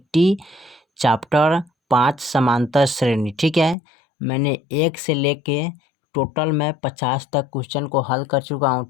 चैप्टर 5 समांतर श्रेणी। ठीक है, मैंने 1 से लेके टोटल मैं 50 तक क्वेश्चन को हल कर चुका हूँ।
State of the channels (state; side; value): drops out; right; at 3.8 s